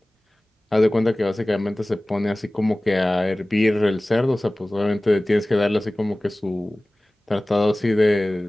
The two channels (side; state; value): both; normal; correlation 0.98